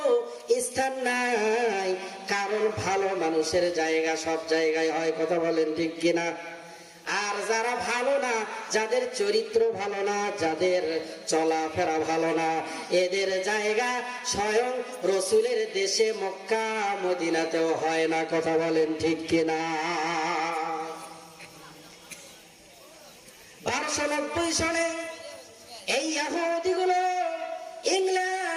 স্থান নাই। কারণ ভালো মানুষের জায়গা সব জায়গায় হয়, কথা বলেন ঠিক কিনা? আর যারা ভালো না, যাদের চরিত্র ভালো না, যাদের চলাফেরা ভালো না, এদের জায়গা স্বয়ং রসুলের দেশে মক্কা মদিনাতেও হয় না, কথা বলেন ঠিক কিনা? 1290 সনে এই ইহুদিগুলো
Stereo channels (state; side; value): identical; both; correlation 1.00